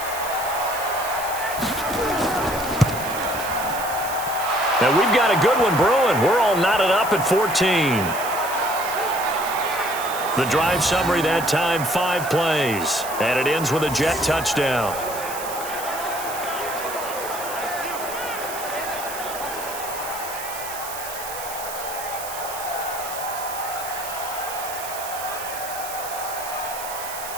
And we've got a good one brewing. We're all knotted up at 14. The drive summary that time, 5 plays. And it ends with a Jet touchdown.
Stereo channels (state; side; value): noise; right; hiss, 10 dB below the sound